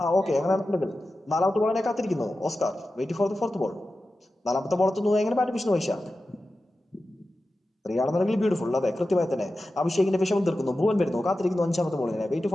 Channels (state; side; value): normal; both; correlation 0.93